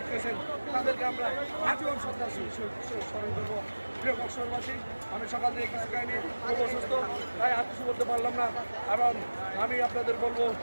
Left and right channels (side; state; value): both; inverted; correlation -1.00